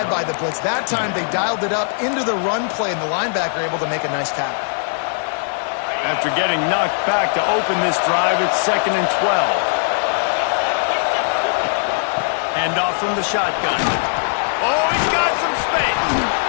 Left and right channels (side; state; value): right; silent; digital silence